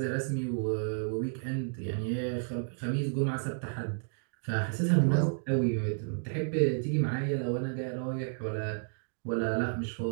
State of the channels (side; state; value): left; silent; digital silence